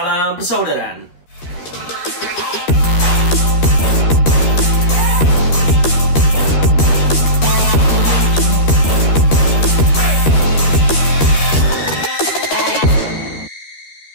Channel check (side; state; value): right; late; 13 ms